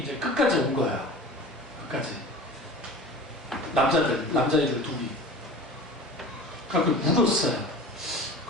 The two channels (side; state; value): both; normal; correlation 0.38